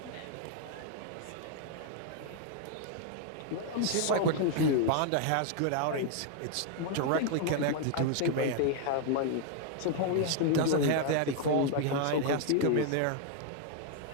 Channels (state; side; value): different; both; correlation 0.00